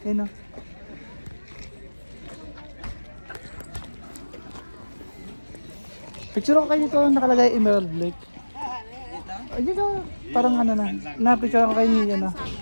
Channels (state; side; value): inverted; both; correlation -1.00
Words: yun, no? Picture ko kayo dito, nakalagay Emerald Lake. Ay, dito, parang ano na. Na-picture ko kayo niyo, no?